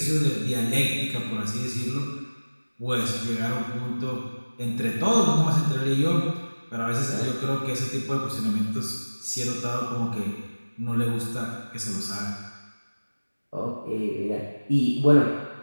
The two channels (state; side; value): inverted; both; correlation -1.00